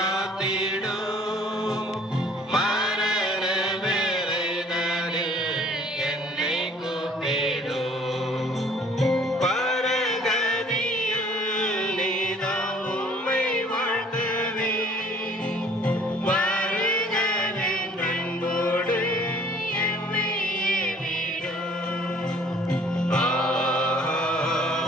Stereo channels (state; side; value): normal; both; correlation 0.55